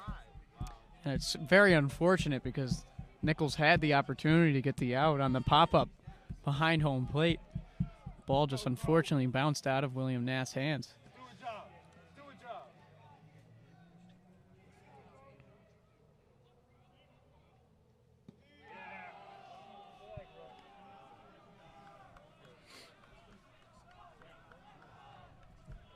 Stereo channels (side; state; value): both; identical; correlation 1.00